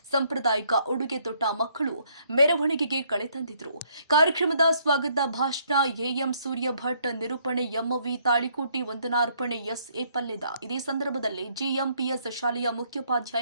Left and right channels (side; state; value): both; inverted; correlation -0.68